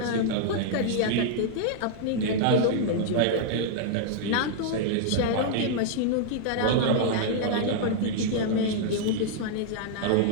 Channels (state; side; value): different; both; correlation -0.01